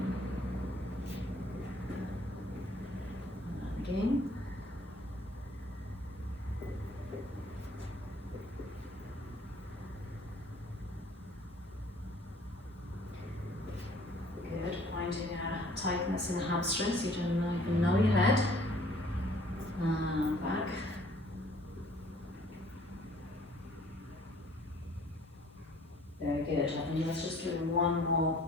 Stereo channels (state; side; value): normal; both; correlation 0.56